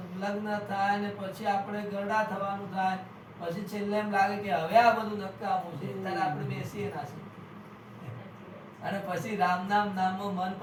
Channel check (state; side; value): identical; both; correlation 1.00